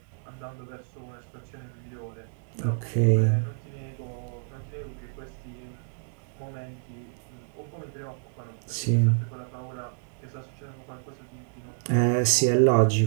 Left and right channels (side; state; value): left; silent; digital silence